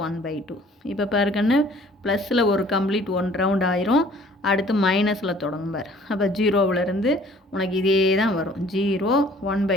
இப்போ பாருக்கன்னு, ப்ளஸில் ஒரு கம்ப்ளீட் 1 ரவுண்ட் ஆயிரும். அடுத்து மைனஸில் தொடங்கும் பார். அப்போ 0விலேருந்து உனக்கு இதே தான் வரும். 0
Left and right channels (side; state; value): both; normal; correlation 0.54